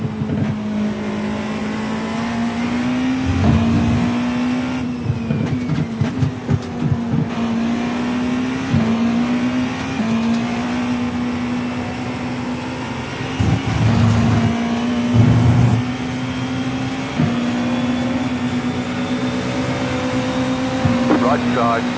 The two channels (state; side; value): identical; both; correlation 1.00